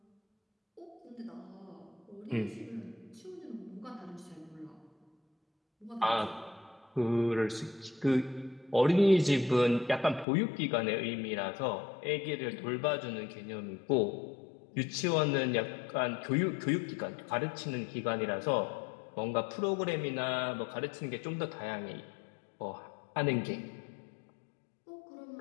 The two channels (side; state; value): right; drops out; at 10.2 s